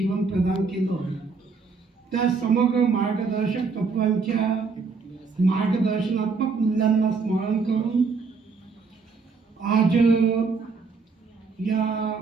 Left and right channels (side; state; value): left; quieter; 4.8 dB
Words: प्रदान केलं, त्या समग्र मार्गदर्शक तत्वांच्या मार्गदर्शनात्मक मूल्यांना स्मरण करून आज या